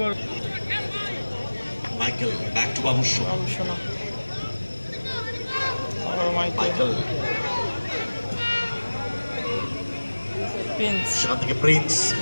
Michael back to Babusona Michael সেখান থেকে প্রিন্স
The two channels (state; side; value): inverted; both; correlation -1.00